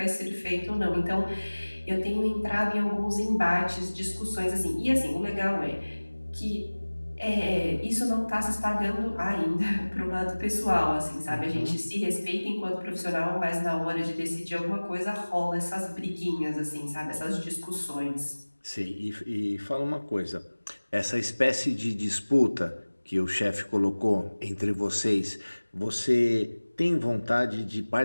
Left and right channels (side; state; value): both; inverted; correlation -1.00